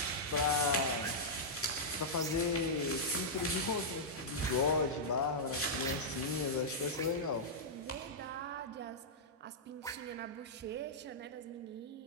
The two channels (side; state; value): both; normal; correlation -0.10